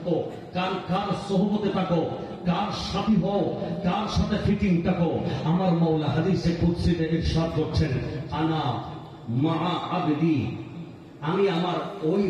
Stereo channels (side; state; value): both; identical; correlation 1.00